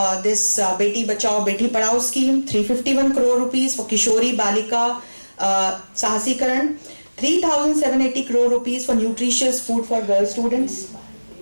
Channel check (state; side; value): inverted; both; correlation -1.00